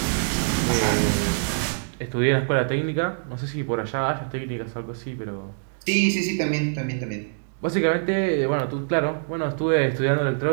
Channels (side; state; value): left; silent; digital silence